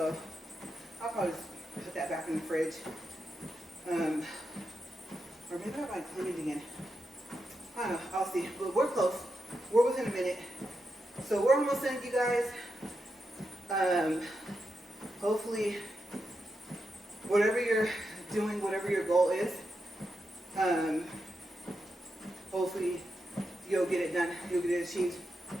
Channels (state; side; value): normal; both; correlation 0.86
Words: I'll probably just put that back in the fridge, or maybe I might clean it again. I don't know, I'll see, but we're close. We're within a minute, so we're almost done, you guys. Hopefully, whatever you're doing, whatever your goal is, hopefully you'll get it done, you'll get it achieved.